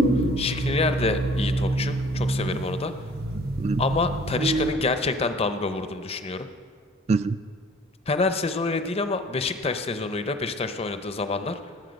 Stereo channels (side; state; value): both; normal; correlation 0.51